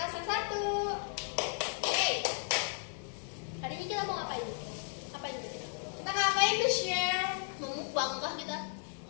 absen 1. Hey, Hari ini kita mau ngapain? Ngapain kita? kita ngapain tuh share? Mau mukbang kah kita?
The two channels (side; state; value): right; silent; 55 dB below the other